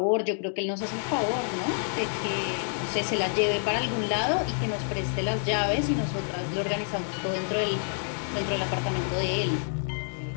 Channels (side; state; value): right; silent; digital silence